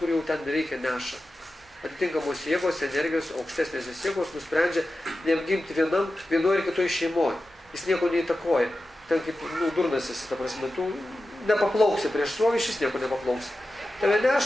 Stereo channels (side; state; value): both; normal; correlation 0.93